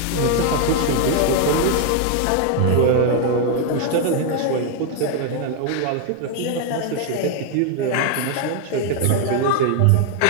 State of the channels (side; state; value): both; different; correlation 0.00